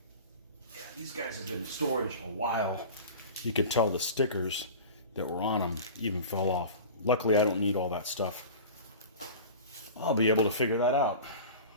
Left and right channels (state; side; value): inverted; both; correlation -0.35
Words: Yeah, these guys have been in storage a while. You can tell the stickers that were on them even fell off. Luckily, I don't need all that stuff. I'll be able to figure that out.